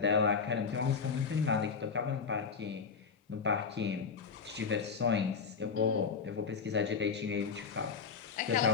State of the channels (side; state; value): right; quieter; 5.6 dB